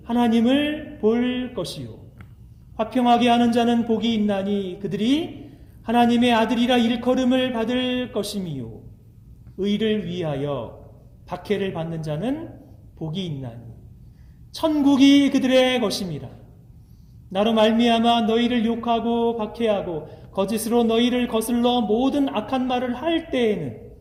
하나님을 볼 것이요, 화평하게 하는 자는 복이 있나니 그들이 하나님의 아들이라 일컬음을 받을 것임이요, 의를 위하여 박해를 받는 자는 복이 있나니 천국이 그들의 것임이라. 나로 말미암아 너희를 욕하고 박해하고 거짓으로 너희를 거슬러 모든 악한 말을 할 때에는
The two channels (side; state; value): both; identical; correlation 1.00